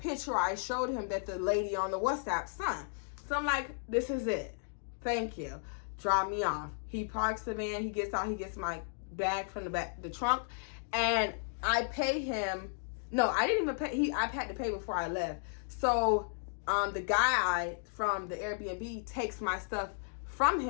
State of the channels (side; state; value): right; silent; digital silence